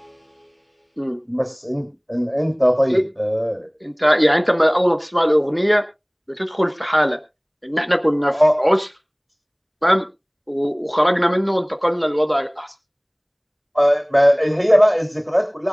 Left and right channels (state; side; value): identical; both; correlation 1.00